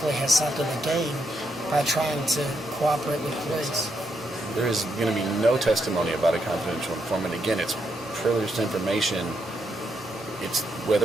has something to gain by trying to cooperate with police? There is going to be no testimony about a confidential informant. Again, it's privileged information. It's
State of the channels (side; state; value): both; normal; correlation 0.79